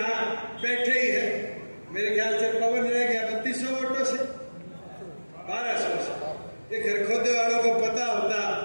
बैठे ही है। मेरे ख्याल से पवन रह गया 3200 वोटों से, 1200 से। ये खरखोदे वालों को पता होता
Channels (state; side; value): inverted; both; correlation -1.00